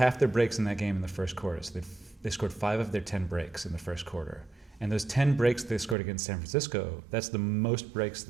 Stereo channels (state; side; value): drops out; left; at 6.0 s